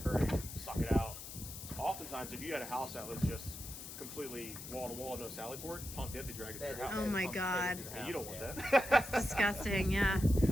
or suck it out. Oftentimes, if you had a house that was just completely wall to wall, no sally port, pump it, they drag it to your house. Oh my Pump it God. into the And you don't house, want yeah. that. That's disgusting. Yeah.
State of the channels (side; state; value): left; noise; hiss, 10 dB below the sound